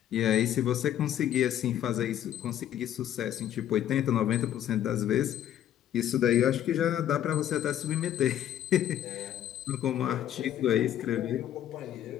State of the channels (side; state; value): right; quieter; 11.2 dB